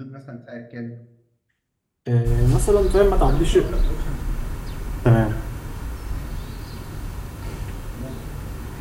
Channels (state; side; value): identical; both; correlation 1.00